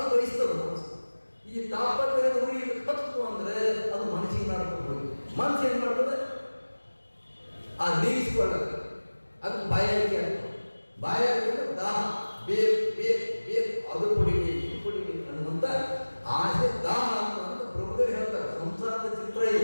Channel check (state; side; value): inverted; both; correlation -1.00